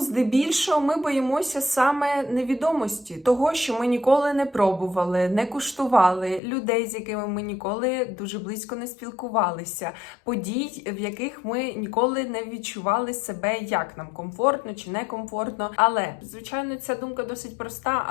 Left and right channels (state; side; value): drops out; right; at 6.4 s